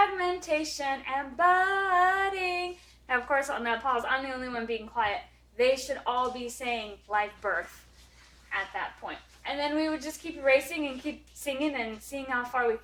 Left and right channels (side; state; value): both; identical; correlation 1.00